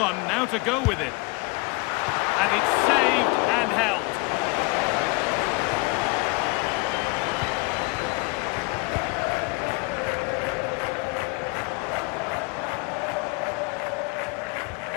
now to go with it. And it's saved and held.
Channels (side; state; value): right; quieter; 27.3 dB